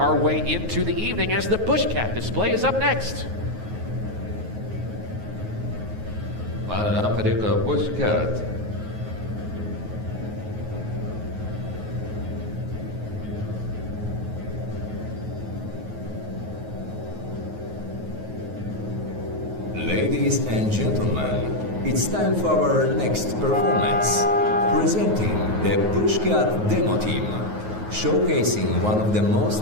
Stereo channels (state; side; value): late; left; 9.4 ms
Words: way into the evening as the Bushcat display is up next. معنا فريق بوشكات. Ladies and gentlemen, it's time for our next performance. Presenting the Bushcat Demo Team, showcasing one of the most